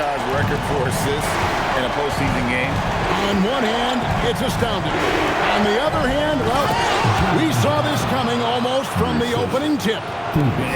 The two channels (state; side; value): identical; both; correlation 1.00